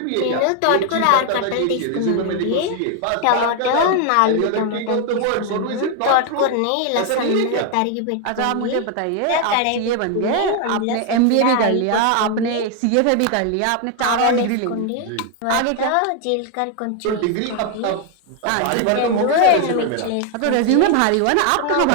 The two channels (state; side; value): different; both; correlation 0.01